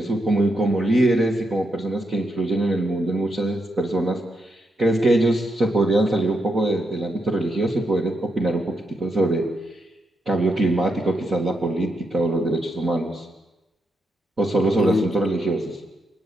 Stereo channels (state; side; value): normal; both; correlation 0.81